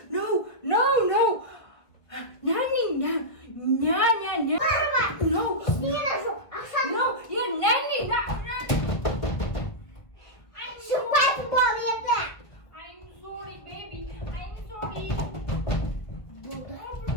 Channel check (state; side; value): late; right; 1.5 ms